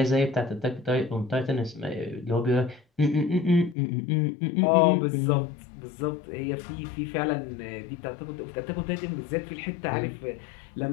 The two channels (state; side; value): drops out; right; at 3.8 s